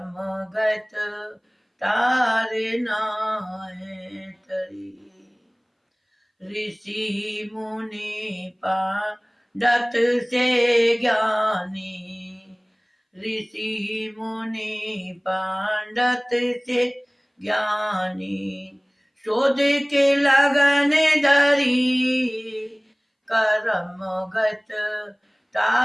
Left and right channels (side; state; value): both; identical; correlation 1.00